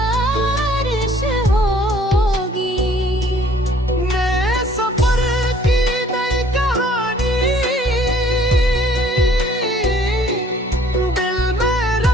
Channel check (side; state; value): both; normal; correlation 0.57